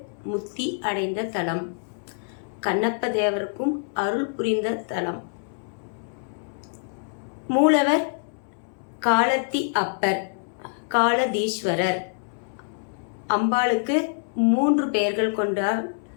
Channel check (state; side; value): silent; right; 61 dB below the other